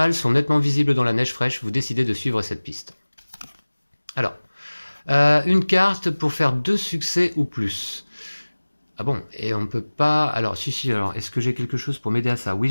sont nettement visibles dans la neige fraîche, vous décidez de suivre cette piste. Alors, une carte pour faire 2 succès ou plus. Ah bon, et on ne peut pas... Alors, si, alors, est-ce que j'ai quelque chose pour m'aider à ça? Oui,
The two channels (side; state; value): both; inverted; correlation -1.00